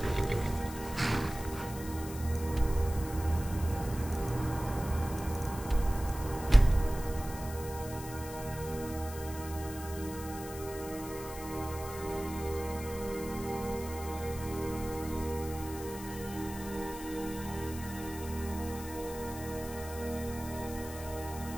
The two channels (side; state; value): left; noise; hiss, 13 dB below the sound